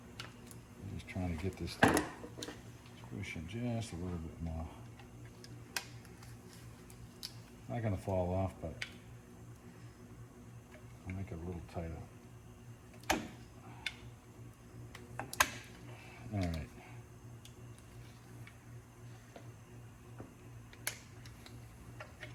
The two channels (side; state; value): both; identical; correlation 1.00